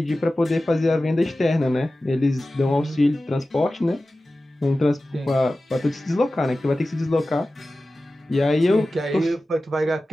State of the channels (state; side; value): normal; both; correlation 0.95